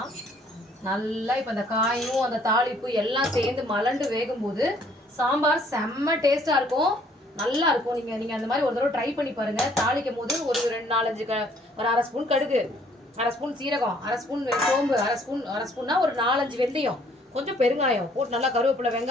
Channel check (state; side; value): normal; both; correlation 0.62